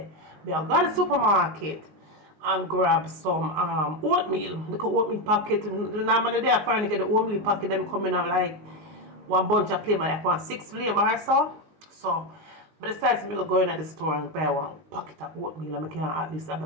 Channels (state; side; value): late; left; 19 ms